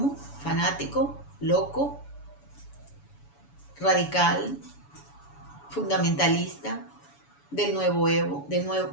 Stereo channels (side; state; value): right; late; 7.0 ms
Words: fanático, loco, radical, fundamentalista. del